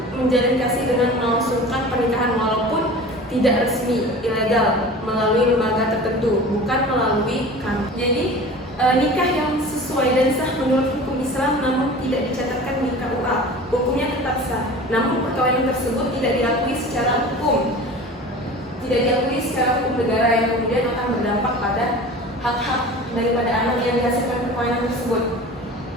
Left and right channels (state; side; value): normal; both; correlation 0.38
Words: menjalin kasih dengan melangsungkan pernikahan walaupun tidak resmi, ilegal, melalui lembaga tertentu, bukan melalui kantor. Jadi nikah yang sesuai dan sah menurut hukum Islam namun tidak dicatatkan di KUA, hukumnya tetap sah. Namun perkawinan tersebut tidak diakui secara hukum negara yang kemudian akan berdampak pada hak-hak daripada anak yang dihasilkan perkawinan tersebut.